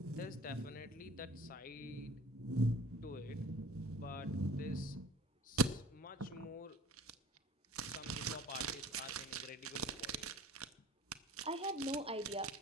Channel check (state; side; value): normal; both; correlation 0.45